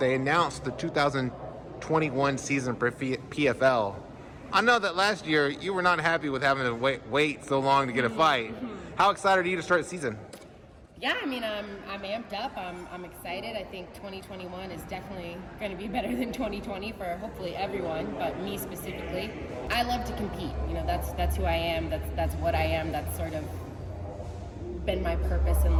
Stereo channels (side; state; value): both; identical; correlation 1.00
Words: announced the 2021 season for PFL. I know that last year you were not happy with having to wait so long to get a fight. How excited are you to start the season? Yeah, I mean, I'm amped up. I'm excited. I think 2021 is definitely going to be better than 2020 for hopefully everyone, but me specifically. I love to compete. You know, that's who I am. That's what I am. That's sort of been my purpose in